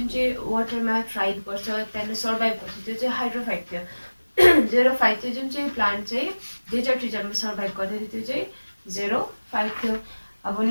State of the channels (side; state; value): both; inverted; correlation -1.00